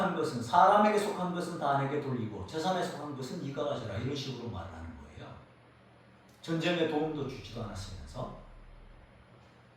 것은, 사람에게 속한 것은 다 내게 돌리고 재산에 속한 것은 네가 가져라, 이런 식으로 말을 하는 거예요. 전쟁에 도움도 주지도 않았으면서.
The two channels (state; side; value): identical; both; correlation 1.00